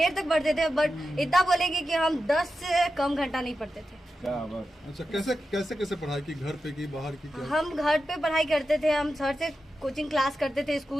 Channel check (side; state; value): both; normal; correlation 0.90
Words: तक पढ़ते थे, बट इतना बोलेंगे कि हम 10 से कम घंटा नहीं पढ़ते थे। अच्छा, कैसे पढ़ाई की, घर पे की बाहर की क्या? हम घर पे पढ़ाई करते थे, हम सर से कोचिंग क्लास करते थे,